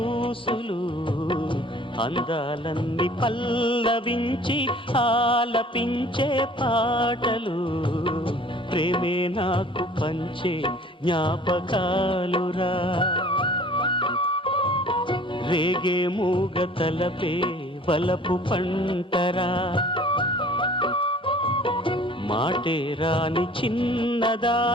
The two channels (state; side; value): normal; both; correlation 0.50